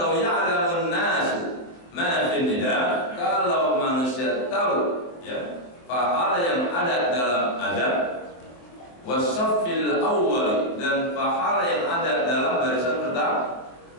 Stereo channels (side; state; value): right; late; 24 ms